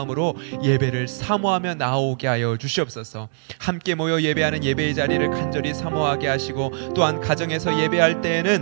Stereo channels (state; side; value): silent; left; 64 dB below the other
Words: 예배를 사모하며 나오게 하여 주시옵소서. 함께 모여 예배하는 예배의 자리를 간절히 사모하게 하시고 또한 가정에서 예배할